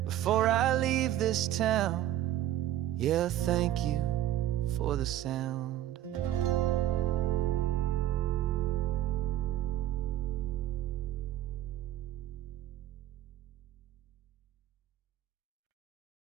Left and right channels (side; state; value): left; quieter; 12.7 dB